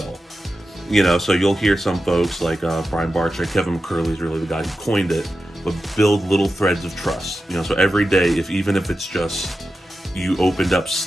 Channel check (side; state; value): both; normal; correlation 0.91